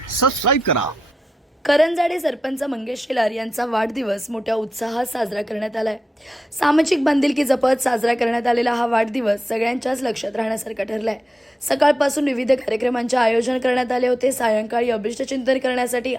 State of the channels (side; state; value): both; normal; correlation 0.89